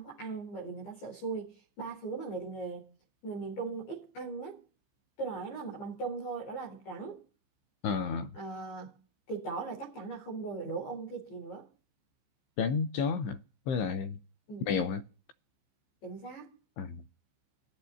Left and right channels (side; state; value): right; late; 15 ms